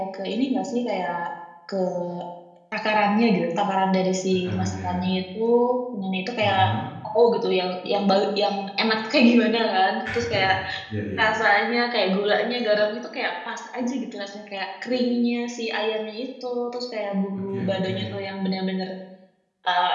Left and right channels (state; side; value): identical; both; correlation 1.00